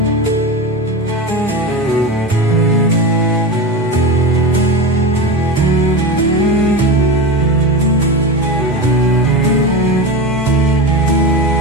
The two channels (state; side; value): normal; both; correlation 0.22